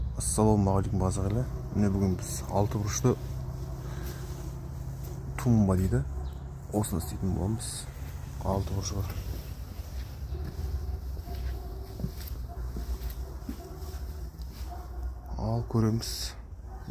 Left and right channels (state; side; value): identical; both; correlation 1.00